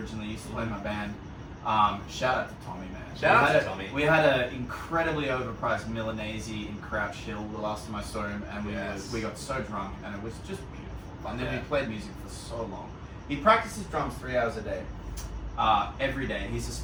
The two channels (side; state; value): both; identical; correlation 1.00